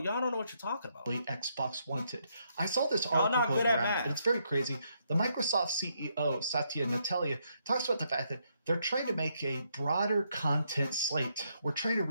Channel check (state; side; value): inverted; both; correlation -0.76